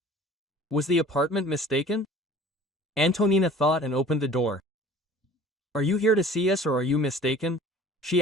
Was the apartment mistaken? Antonina thought and opened the door. Are you here to see us or are you mistaken? She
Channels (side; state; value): both; normal; correlation 0.47